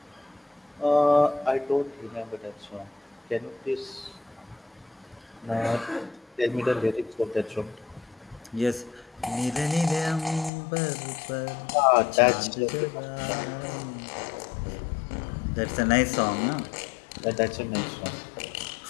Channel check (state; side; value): drops out; right; at 10.5 s